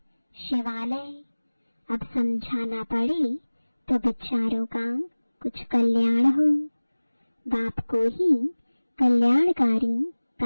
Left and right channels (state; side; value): inverted; both; correlation -1.00